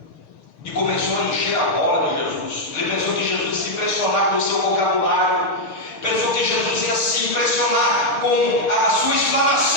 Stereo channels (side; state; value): right; late; 6.6 ms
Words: E começou a encher a bola de Jesus. Ele pensou que Jesus ia se impressionar com o seu vocabulário, pensou que Jesus ia se impressionar com a sua